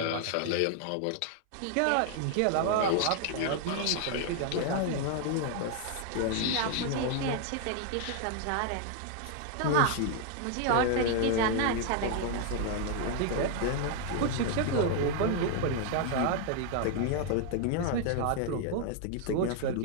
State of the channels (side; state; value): both; different; correlation 0.00